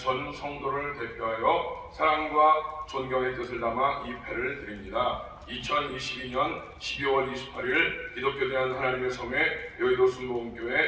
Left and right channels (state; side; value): identical; both; correlation 1.00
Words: 성도를 대표하여 사랑과 존경의 뜻을 담아 이 패를 드립니다. 2022년 12월 28일 기독교 대한 하나님의 섬에 여의도